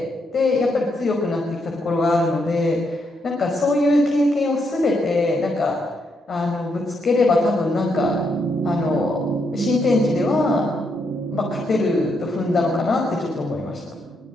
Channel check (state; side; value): normal; both; correlation 0.78